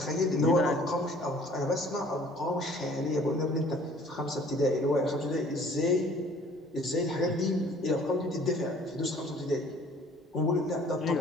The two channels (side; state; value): both; normal; correlation 0.54